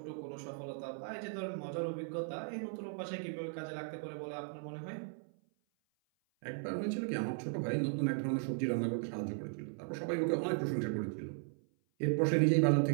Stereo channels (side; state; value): left; silent; 53 dB below the other